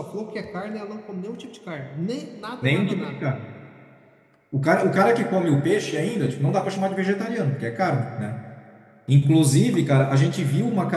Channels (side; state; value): both; identical; correlation 1.00